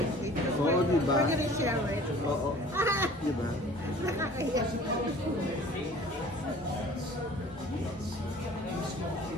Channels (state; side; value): normal; both; correlation 0.48